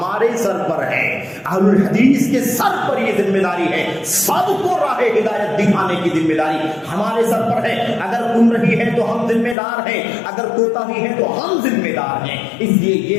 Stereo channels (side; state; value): right; drops out; at 9.6 s